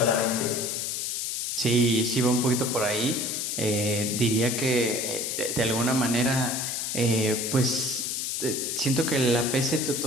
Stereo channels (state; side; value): noise; left; hiss, 2 dB below the sound